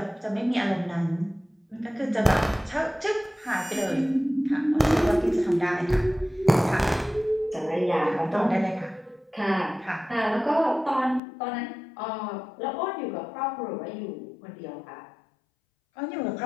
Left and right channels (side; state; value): right; drops out; at 11.2 s